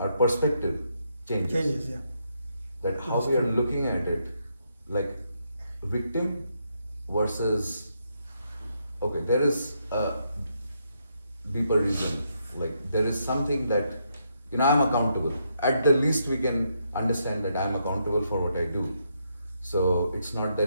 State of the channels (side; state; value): both; inverted; correlation -0.78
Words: our perspective changes. Changes, yeah. That how we are looking at it, like victim versus, okay, there is a deeper reason. Like there is something that, I'm accountable. At the least we can understand that I'm accountable for what I do. So it's not